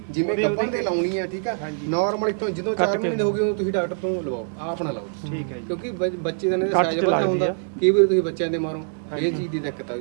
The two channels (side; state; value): left; silent; digital silence